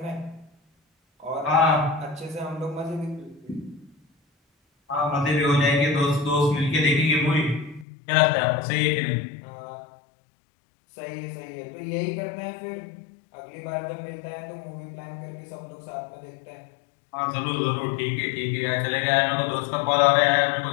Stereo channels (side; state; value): right; drops out; at 7.9 s